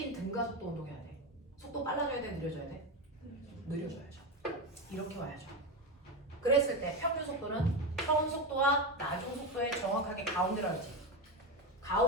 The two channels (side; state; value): both; normal; correlation 0.16